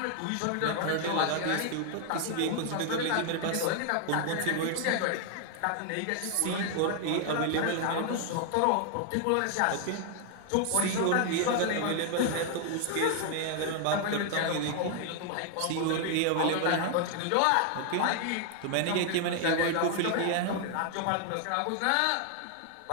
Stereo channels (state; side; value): different; both; correlation 0.00